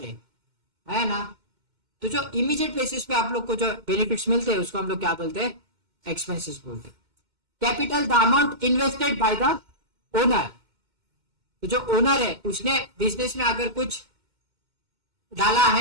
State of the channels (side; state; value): left; late; 2.1 ms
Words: है ना। तो जो इमीडिएट बेसिस पे आप लोग को जो बेनिफिट्स मिलते हैं उसको हम लोग क्या बोलते हैं? एक्सपेंसेस बोलते हैं। Capital the amount invested by the owner. तो जो ओनर है उसने बिजनेस में अगर कुछ डाला